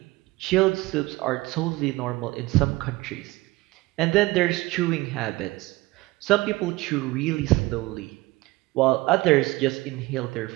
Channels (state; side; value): quieter; left; 20.5 dB